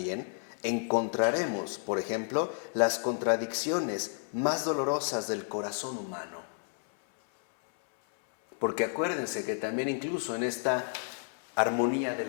encontraremos, por ejemplo, las contradicciones más dolorosas del corazón humano. Porque acuérdense que también incluso en esta armonía de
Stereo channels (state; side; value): silent; right; 57 dB below the other